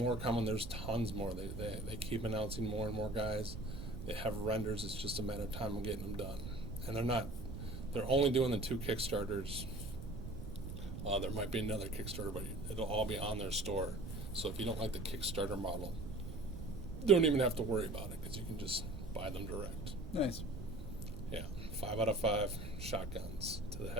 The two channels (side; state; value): right; noise; rumble, 8 dB below the sound